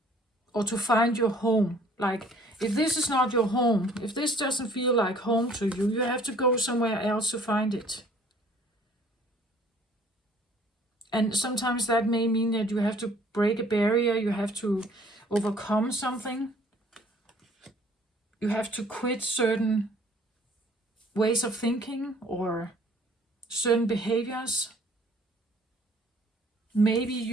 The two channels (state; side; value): normal; both; correlation 0.56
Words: or to find your home. Like, if this is not your home, if this doesn't feel like home to you, you have to go somewhere else to find it. And sometimes that may mean that you have to break a barrier, you have to overcome something. You have to quit certain ways of thinking or certain behaviors. Maybe